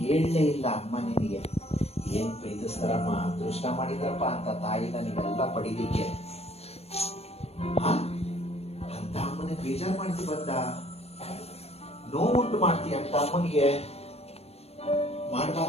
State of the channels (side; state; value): right; late; 0.30 ms